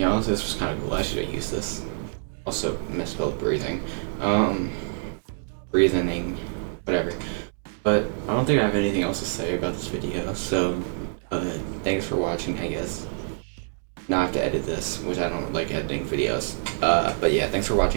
this was kind of cool. I should have used this. Also misspelled breathing. Breathing, whatever. But I don't think I have anything else to say about this video, so thanks for watching, I guess. Now I have to edit this, which I don't like editing videos. But yeah, thanks for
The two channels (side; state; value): left; silent; digital silence